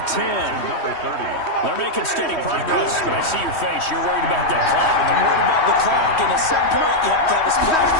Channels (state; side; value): late; right; 3.1 ms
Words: 10. Number 30. They're making steady progress, but I see your face. You're worried about that clock. I'm worried about the clock, and at some point, you have to have a splash